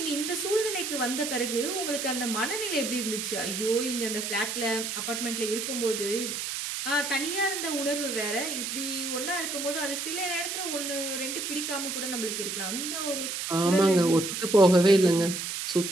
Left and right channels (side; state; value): right; noise; hiss, 4 dB below the sound